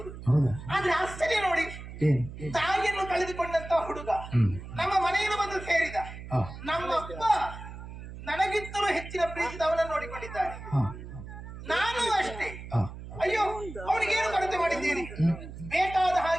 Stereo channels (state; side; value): noise; right; hum, 12 dB below the sound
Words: ಆದ್ರೆ ಆಶ್ಚರ್ಯ ನೋಡಿ, ತಾಯಿಯನ್ನು ಕಳೆದುಕೊಂಡಂತ ಹುಡುಗ ನಮ್ಮ ಮನೆಯನ್ನು ಬಂದು ಸೇರಿದ. ನಮ್ಮಪ್ಪ ನನಗಿಂತಲೂ ಹೆಚ್ಚಿನ ಪ್ರೀತಿದ ಅವನನ್ನು ನೋಡಿಕೊಂಡಿದ್ದಾರೆ. ನಾನು ಅಷ್ಟೇ. ಅಯ್ಯೋ, ಅವನಿಗೇನು ಕೊರತೆ ಮಾಡಿದ್ದೇನೆ? ಬೇಕಾದ